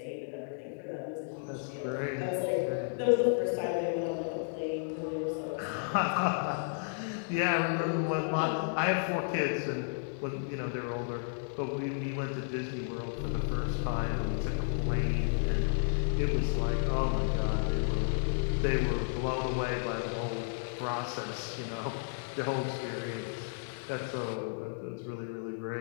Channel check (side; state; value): right; silent; digital silence